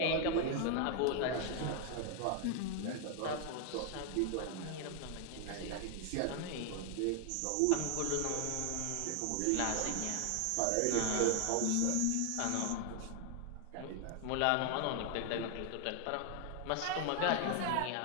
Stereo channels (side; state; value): both; different; correlation 0.00